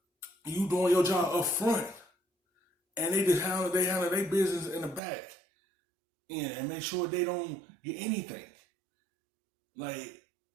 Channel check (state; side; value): drops out; left; at 5.0 s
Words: you doing your job up front. And they just handle their business in the back and make sure they don't get anything. Like,